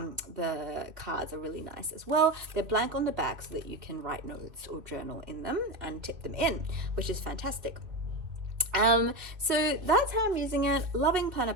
cards are really nice as well. They're blank on the back so that you can write notes or journal in them and tip them in, which is fantastic. So that's how I'm using it. Loving Planner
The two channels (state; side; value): late; left; 2.7 ms